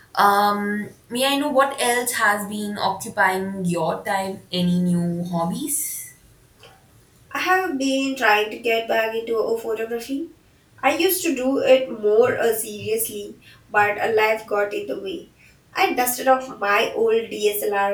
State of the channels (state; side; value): identical; both; correlation 1.00